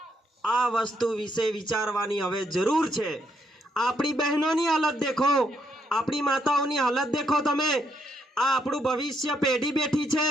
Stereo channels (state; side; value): normal; both; correlation 0.75